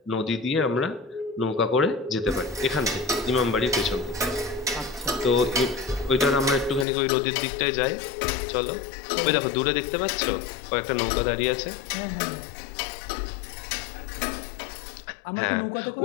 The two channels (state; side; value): drops out; right; at 6.9 s